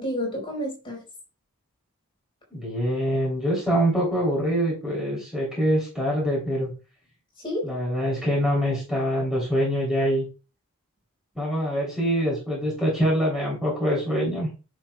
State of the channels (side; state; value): both; normal; correlation 0.59